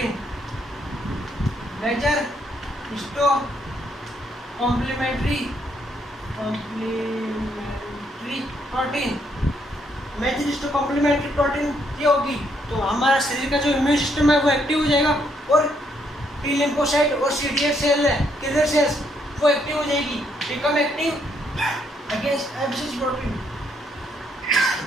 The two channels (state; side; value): normal; both; correlation 0.73